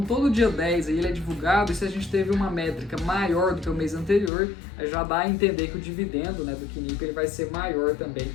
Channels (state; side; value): drops out; right; at 4.3 s